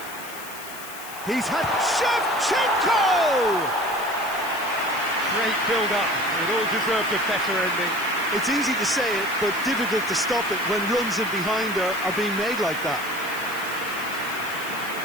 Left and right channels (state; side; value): noise; left; hiss, 14 dB below the sound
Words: He's had Shevchenko! Great build-up. It all deserved a better ending. It's easy to say it, but difficult to stop it when runs in behind are being made like that.